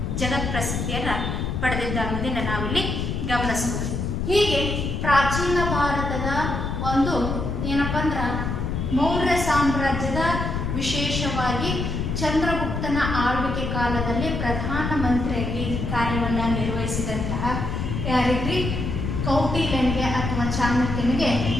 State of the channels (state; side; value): noise; left; rumble, 2 dB below the sound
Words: ಜಗತ್ ಪ್ರಸಿದ್ಧಿಯನ್ನು ಪಡೆದಿದ್ದ ಅನ್ನೋದನ್ನು ನಾವಿಲ್ಲಿ ಗಮನಿಸ್ಬೋದು. ಹೀಗೆ ಪ್ರಾಚೀನ ಭಾರತದ ಒಂದು ಏನಪ್ಪ ಅಂದ್ರೆ ಮೌರ್ಯ ಸಾಮ್ರಾಜ್ಯದ ವಿಶೇಷವಾಗಿ ಚಂದ್ರಗುಪ್ತನ ಆಳ್ವಿಕೆ ಕಾಲದಲ್ಲಿ ಪ್ರಧಾನಮಂತ್ರಿಯಾಗಿ ಕಾರ್ಯವನ್ನು ನಿರ್ವಹಿಸಿದಂತಹ ಯಾರಿಗ್ರಿ ಕೌಟಿಲ್ಯನಿಗೆ ಅಥವಾ ಚಾಣಕ್ಯನಿಗೆ